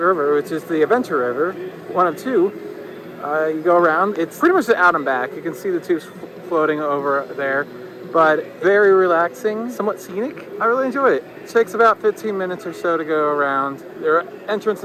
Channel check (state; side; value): identical; both; correlation 1.00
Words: which is the Adventure River, one of 2, you go around. It's pretty much the out and back. You can see the tubes floating over there. But very relaxing, somewhat scenic. I really enjoy it. It takes about 15 minutes or so to go around. There are entrance